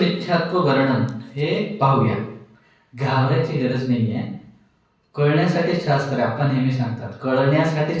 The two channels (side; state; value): both; identical; correlation 1.00